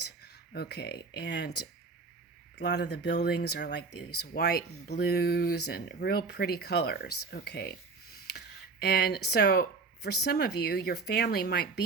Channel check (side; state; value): left; quieter; 4.3 dB